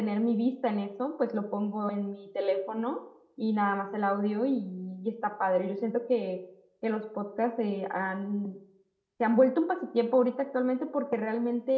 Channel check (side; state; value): both; identical; correlation 1.00